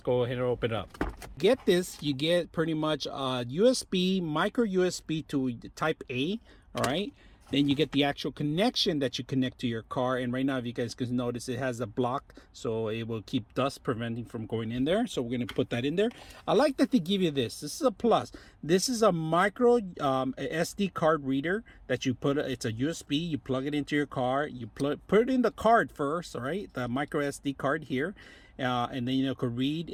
ahead and open it up. Get this, you get pretty much a USB, micro USB to type A, all right? Then you get the actual connection that you connect to your car. And right now, if you guys can notice, it has a block, so it will keep dust preventing from going in there. So we're going to put that in there. I like that they give you this. This is a plus. This is a micro SD card reader that you put. It's a USB. You plug it into your car. You put it in the card first, all right? The micro SD card here. And then you could read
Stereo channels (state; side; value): identical; both; correlation 1.00